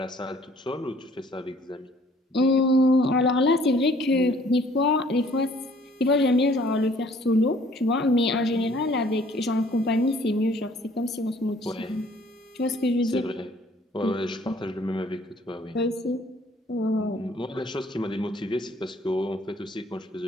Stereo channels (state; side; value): normal; both; correlation 0.58